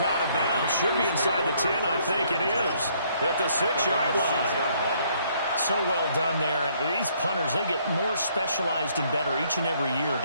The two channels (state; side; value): inverted; both; correlation -0.66